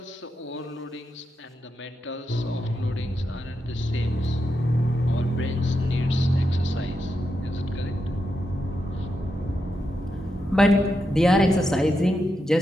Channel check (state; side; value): normal; both; correlation 0.85